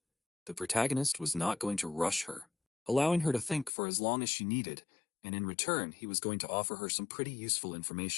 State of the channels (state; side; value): drops out; right; at 3.7 s